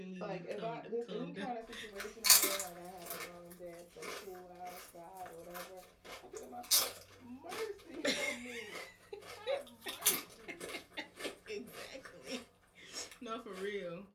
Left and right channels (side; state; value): both; identical; correlation 1.00